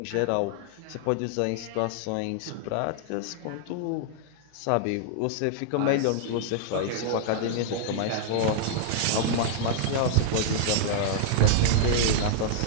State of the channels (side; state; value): both; different; correlation -0.01